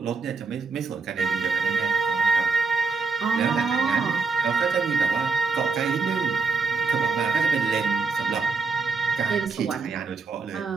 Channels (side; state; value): left; quieter; 4.6 dB